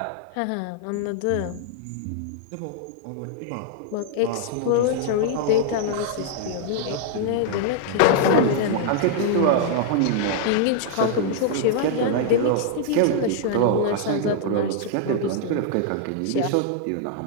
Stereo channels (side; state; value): both; different; correlation -0.01